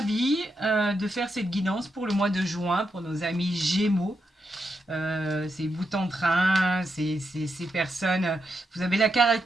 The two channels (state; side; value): normal; both; correlation 0.84